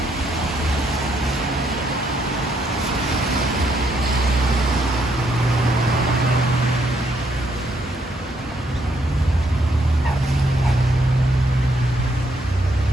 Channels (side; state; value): both; normal; correlation 0.73